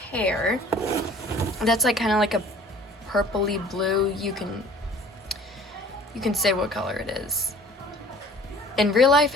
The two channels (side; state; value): both; normal; correlation 0.49